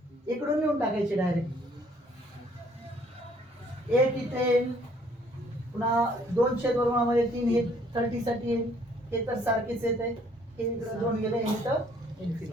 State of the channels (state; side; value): normal; both; correlation 0.62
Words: इकडून लिहून टाकायचे डायरेक्ट. एक इथे पुन्हा 2/3 हे 30 साठी हे तर सारखेच येत आहे. हे इकडे 2 गेले, हे तर